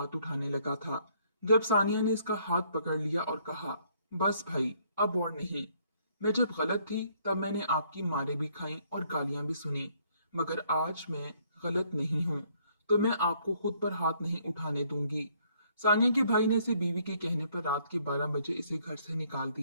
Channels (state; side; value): inverted; both; correlation -0.65